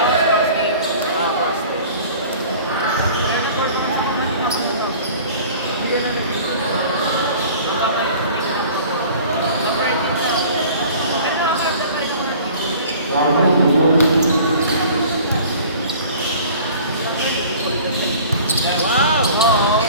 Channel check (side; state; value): both; inverted; correlation -0.46